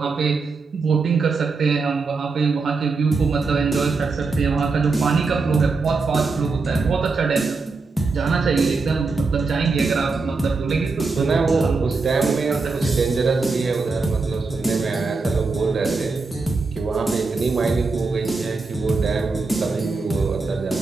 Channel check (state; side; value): quieter; left; 4.1 dB